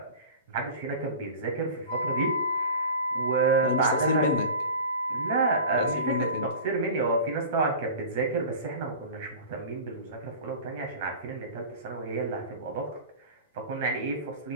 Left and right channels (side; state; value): both; inverted; correlation -0.37